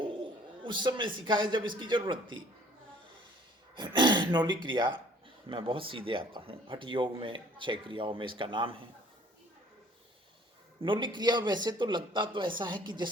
उस समय सिखाया जब इसकी जरूरत थी। न्योली क्रिया मैं बहुत सीधे आता हूँ। हठ योग में 6 क्रियाओं में इसका नाम है। न्योली क्रिया वैसे तो लगता तो ऐसा है कि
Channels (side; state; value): both; normal; correlation 0.55